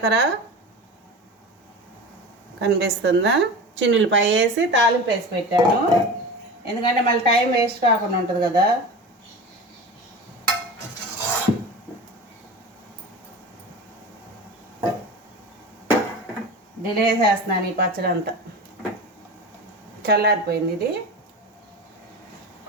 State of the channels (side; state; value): both; normal; correlation 0.30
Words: కనిపిస్తుందా, చిన్నులపై వేసి తాలింపు వేసి పెట్టాను. ఎందుకంటే మళ్ళీ టైం వేస్ట్ కాకుండా ఉంటుంది కదా. డిలే చేస్తున్నాను ఈ పచ్చడి అంతా. చల్లారిపోయింది ఇది.